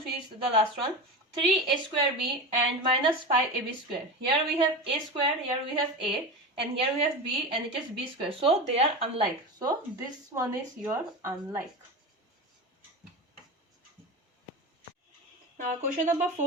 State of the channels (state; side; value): normal; both; correlation 0.25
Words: is the last one. 3a square b and minus 5ab square. Here we have a square, here we have a, and here we have b, and it is b square. So they are unlike. So this one is your unlike. Now question number